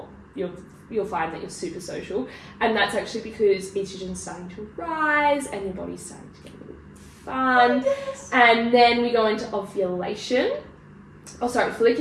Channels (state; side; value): identical; both; correlation 1.00